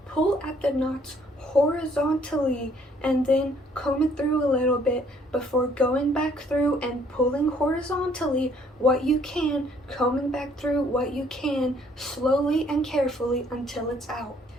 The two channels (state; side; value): normal; both; correlation 0.63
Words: pull at the knots horizontally and then comb it through a little bit before going back through and pulling horizontally what you can, combing back through what you can, slowly and carefully until it's out.